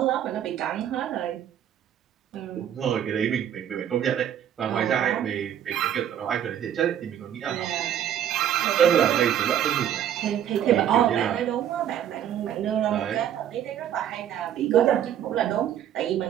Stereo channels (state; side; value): quieter; left; 10.2 dB